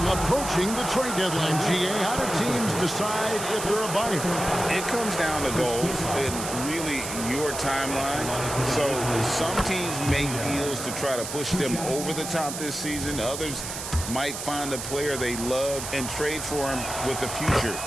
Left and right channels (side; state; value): right; noise; hiss, 7 dB below the sound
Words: approaching the trade deadline, GA. How do teams decide if they're a buyer? It comes down to goals and really your timeline. So some teams make deals to try to push them over the top this season. Others might find a player they love and trade for him with the future